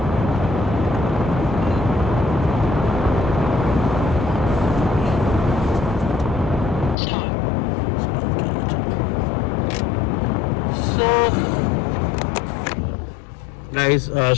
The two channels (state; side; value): drops out; right; at 7.0 s